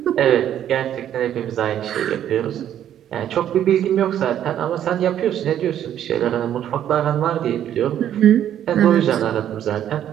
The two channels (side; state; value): left; quieter; 10.6 dB